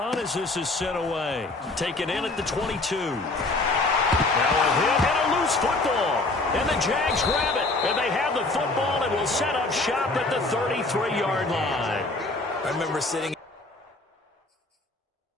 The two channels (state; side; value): quieter; right; 3.1 dB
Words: as this is sent away. Taken in at the 22. Now a hit and a loose football. And the Jags grab it. And they have the football and will set up shop at the 33-yard line. I remember sitting